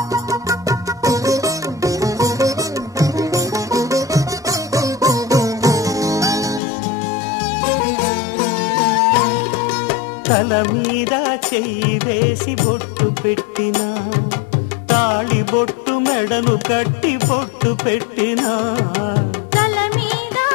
తల మీద చెయ్యి వేసి బొట్టు పెట్టినా తాళి బొట్టు మెడను కట్టి బొట్టు పెట్టినా. తల మీద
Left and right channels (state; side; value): drops out; right; at 6.6 s